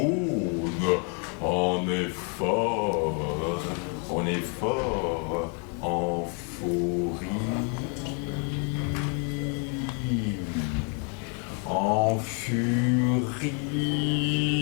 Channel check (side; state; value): right; quieter; 39.2 dB